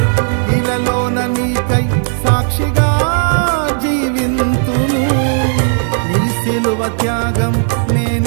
ఇలలోన నీకై సాక్షిగా జీవింతును. నీ సిలువ త్యాగం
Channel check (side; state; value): left; silent; 69 dB below the other